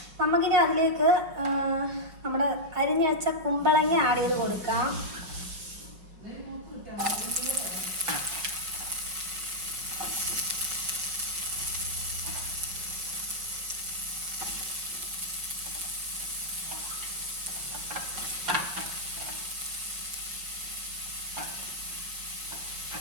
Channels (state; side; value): late; left; 5.4 ms